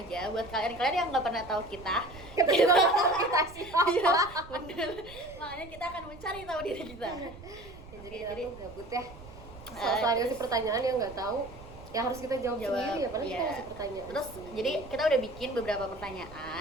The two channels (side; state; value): right; noise; rumble, 17 dB below the sound